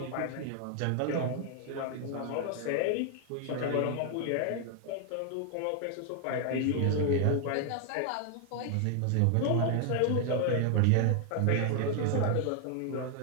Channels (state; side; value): different; both; correlation 0.00